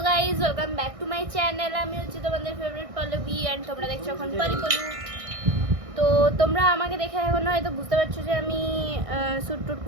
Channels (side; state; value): left; late; 1.6 ms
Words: guys, welcome back to my channel. আমি হচ্ছে তোমাদের ফেভারিট পল্লবী অ্যান্ড তোমরা দেখছো এখন পল্লু। তো তোমরা আমাকে দেখে এখন হয়তো বুঝতে পারছো যে আমি শ্যুট টুট